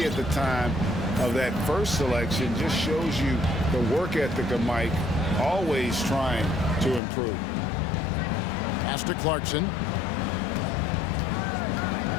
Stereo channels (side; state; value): right; drops out; at 7.0 s